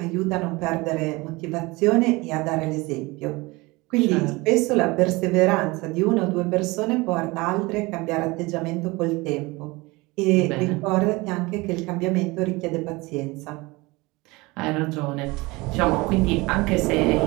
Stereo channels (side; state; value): left; quieter; 23.3 dB